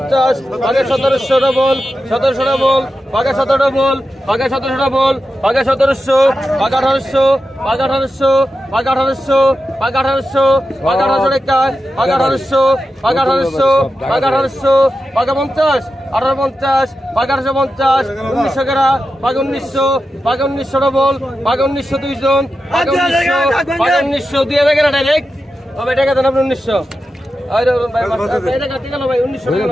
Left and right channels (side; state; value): both; normal; correlation 0.90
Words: বাঘা 1700 ডবল, 1700 ডবল, বাঘা 17 ডবল, বাঘা 1700 ডবল, বাঘা 1700, বাঘা 1800, বাঘা 1800, বাঘা 1800, বাঘা 1800, বাঘা 1800 টাকা, বাঘা 1800, বাঘা 1800, বাঘা 1800, বাঘা 50, 1850, বাঘা 1850, 1900 গেরা, বাঘা 1900, বাঘা 1900 ডবল, বাঘা 1900 দুইজন, বাঘা 1900, বাঘা 1900 দিয়ে গেরা ডাইরেক্ট। তবে টাকা দেন আপনি 1900। আরে ভাই এটা কাটি গেল ভাই